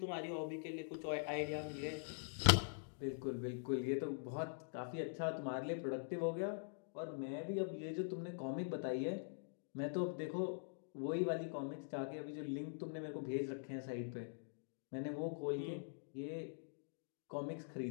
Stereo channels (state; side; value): silent; right; digital silence